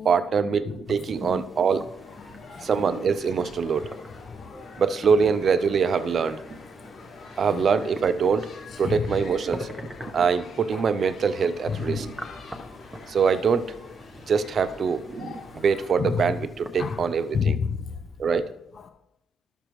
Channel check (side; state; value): left; quieter; 4.5 dB